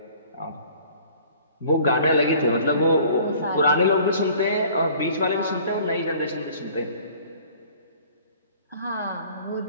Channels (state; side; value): inverted; both; correlation -0.51